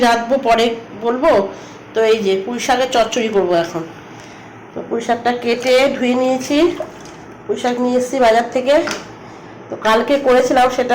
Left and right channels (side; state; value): both; identical; correlation 1.00